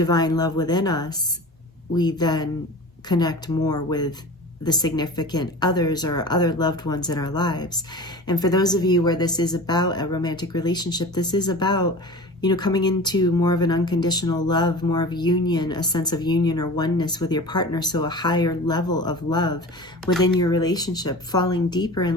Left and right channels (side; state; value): both; normal; correlation 0.35